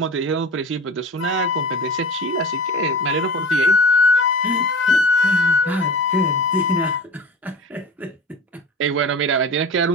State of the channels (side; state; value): both; normal; correlation 0.34